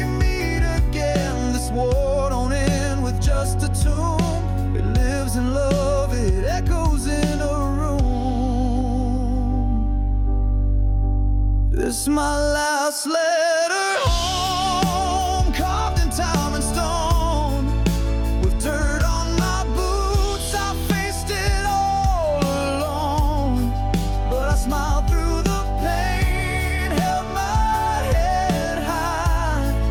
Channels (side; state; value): both; identical; correlation 1.00